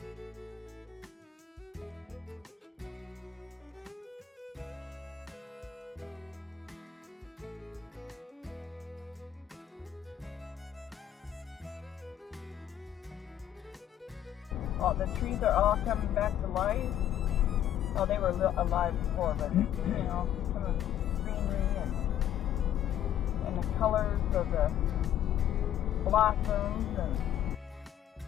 Oh, the trees are all coming back to life. Oh, they were alive before, but you know, some of the greenery and the colors of the blossoms and.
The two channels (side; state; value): right; quieter; 10.9 dB